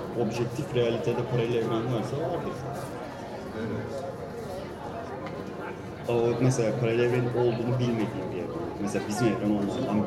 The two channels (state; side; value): identical; both; correlation 1.00